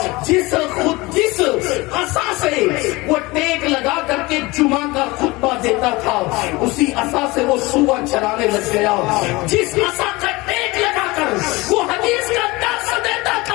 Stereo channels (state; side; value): quieter; right; 22.5 dB